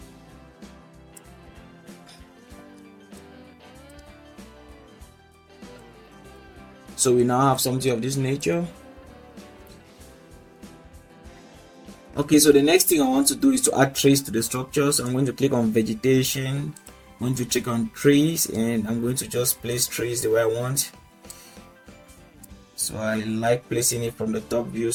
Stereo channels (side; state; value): both; identical; correlation 1.00